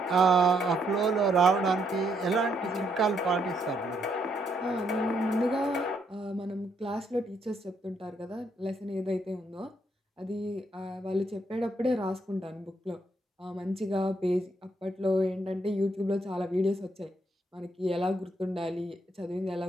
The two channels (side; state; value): both; normal; correlation 0.74